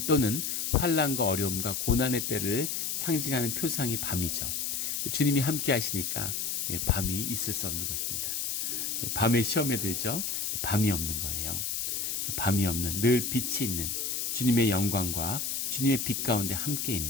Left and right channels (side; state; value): left; noise; hiss, 1 dB below the sound